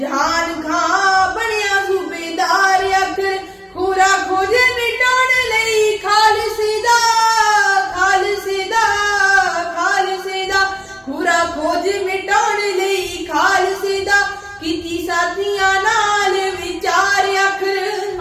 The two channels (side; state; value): both; identical; correlation 1.00